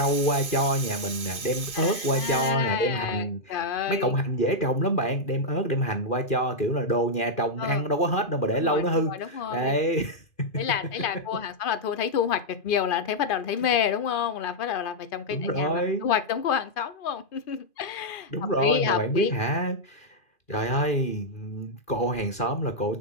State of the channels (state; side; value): late; right; 2.5 ms